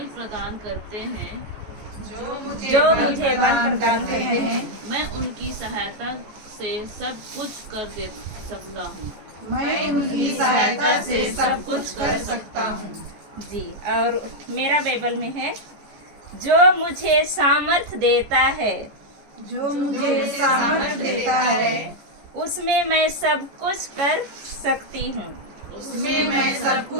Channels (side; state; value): left; late; 14 ms